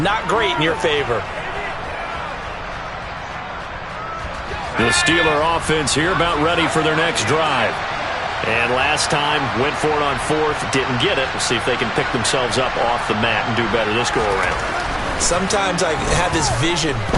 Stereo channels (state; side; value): identical; both; correlation 1.00